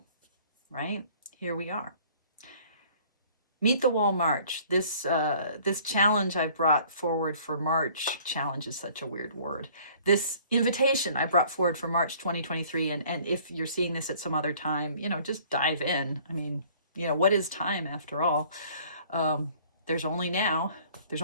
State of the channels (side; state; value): both; inverted; correlation -0.54